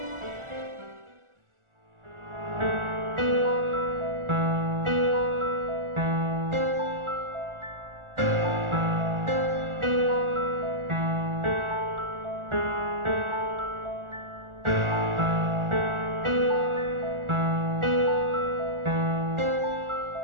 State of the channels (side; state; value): left; late; 1.4 ms